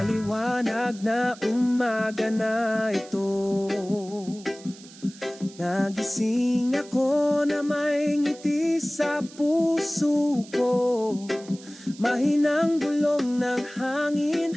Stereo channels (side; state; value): right; noise; hiss, 20 dB below the sound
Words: na umaga na ito, nagising ako na may ngiti sa puso ko. Mahinang bulong ng hangin